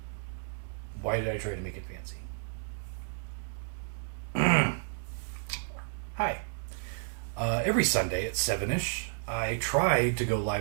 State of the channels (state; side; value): silent; left; digital silence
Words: Why did I try to make it fancy? Hi. Every Sunday at 7-ish, I try to go